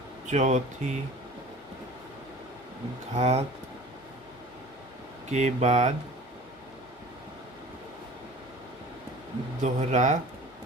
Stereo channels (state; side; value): normal; both; correlation 0.42